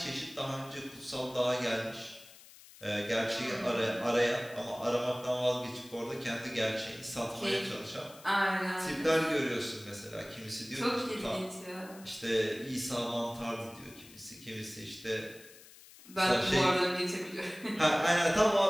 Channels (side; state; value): left; noise; hiss, 21 dB below the sound